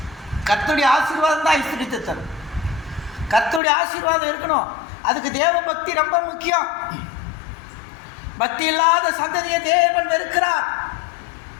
கர்த்தருடைய ஆசீர்வாதம் தான் ஐஸ்வரியத்தை தரும். கர்த்தருடைய ஆசீர்வாதம் இருக்கணும். அதுக்கு தேவ பக்தி ரொம்ப முக்கியம். பக்தி இல்லாத சந்ததியை தேவன் வெறுக்கிறார்.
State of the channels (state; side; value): drops out; right; at 3.6 s